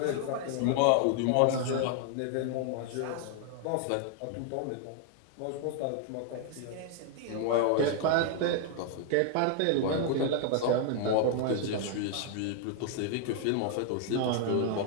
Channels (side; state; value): both; different; correlation 0.00